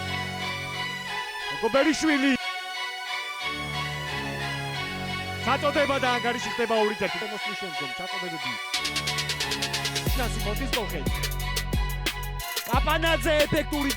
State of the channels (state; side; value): identical; both; correlation 1.00